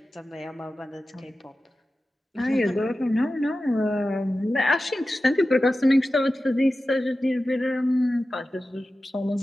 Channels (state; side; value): normal; both; correlation 0.94